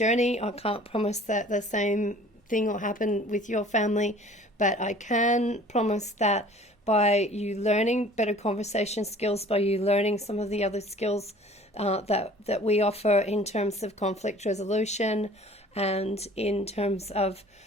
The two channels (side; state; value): both; normal; correlation 0.49